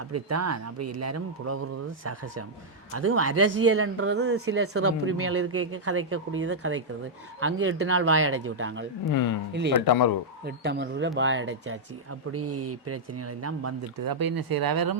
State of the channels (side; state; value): both; normal; correlation -0.06